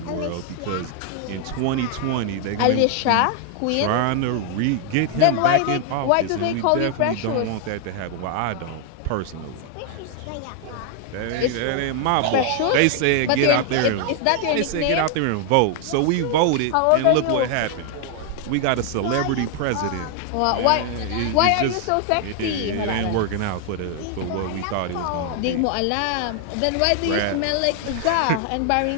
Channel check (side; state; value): both; different; correlation 0.00